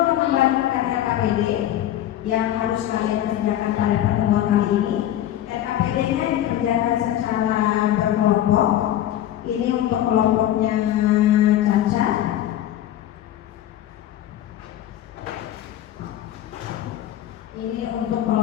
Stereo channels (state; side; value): quieter; right; 12.3 dB